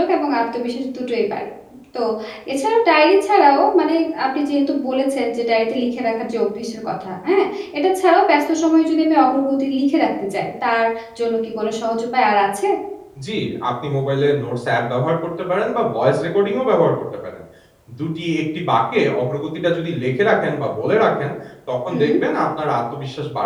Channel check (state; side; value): identical; both; correlation 1.00